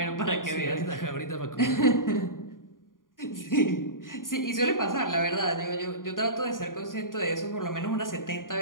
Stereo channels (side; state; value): right; late; 0.90 ms